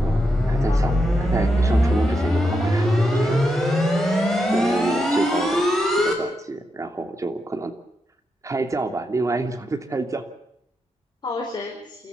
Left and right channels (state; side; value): normal; both; correlation 0.84